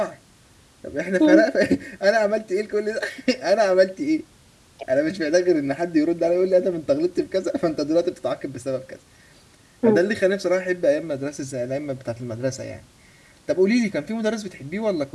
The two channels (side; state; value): both; identical; correlation 1.00